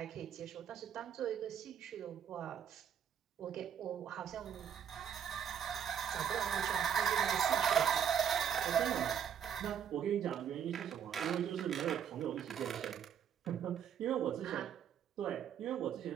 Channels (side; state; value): left; quieter; 8.6 dB